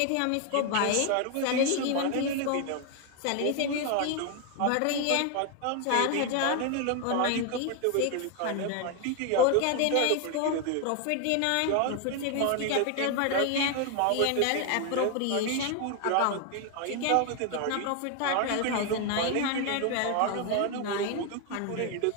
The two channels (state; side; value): different; both; correlation 0.01